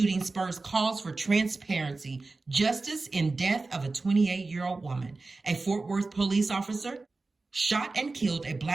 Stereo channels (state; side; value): quieter; left; 3.6 dB